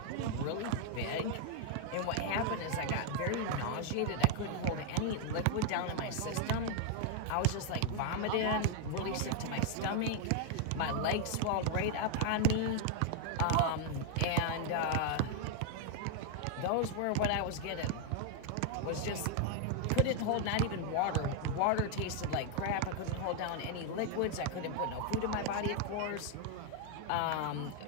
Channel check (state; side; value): different; both; correlation 0.00